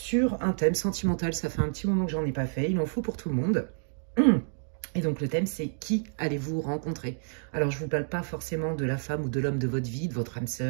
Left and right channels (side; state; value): left; silent; digital silence